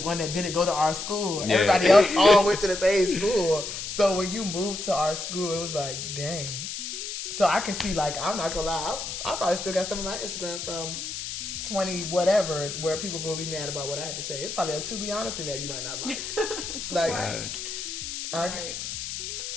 that didn't go to our school. And everybody else all went to the same school. So when you moved to our school, it was like, dang. So I can see, like, I'm not gonna lie, I probably still got stuff on my Instagram from 20 whatever where people gonna be mad about what I had to say. It's probably a to be honest in there you might not like.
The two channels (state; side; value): noise; left; hiss, 6 dB below the sound